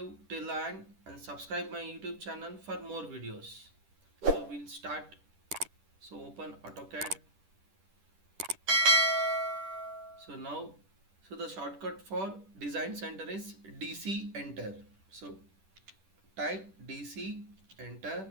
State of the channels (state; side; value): late; left; 10 ms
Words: till the end and subscribe my YouTube channel for more videos. So we'll start. So open AutoCAD. So now, the shortcut for design center is DC enter. So type DC